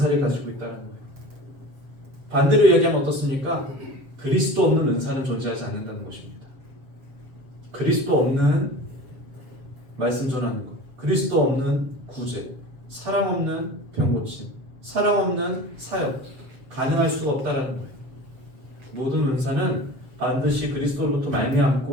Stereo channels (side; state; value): left; late; 7.5 ms